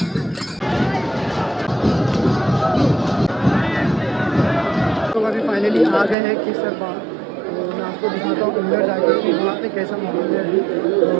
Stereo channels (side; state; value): left; drops out; at 6.2 s